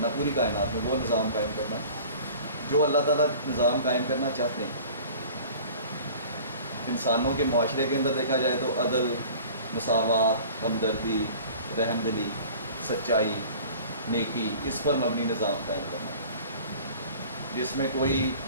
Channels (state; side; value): inverted; both; correlation -0.44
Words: پوری کائنات میں وہ نظام قائم کرنا جو اللہ تعالیٰ نظام قائم کرنا چاہتے ہیں. انسانوں کے معاشرے کے اندر دیکھا جائے تو عدل، مساوات، ہمدردی، رحم دلی، سچائی، نیکی، اس پر مبنی نظام قائم کرنا جس میں کوئی